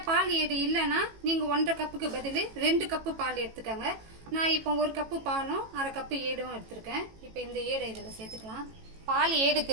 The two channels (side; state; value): left; late; 18 ms